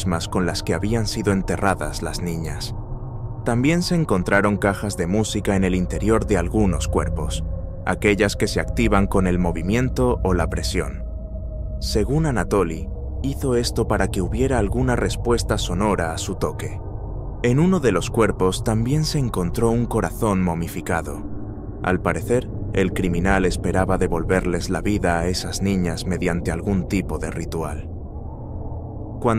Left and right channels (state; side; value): identical; both; correlation 1.00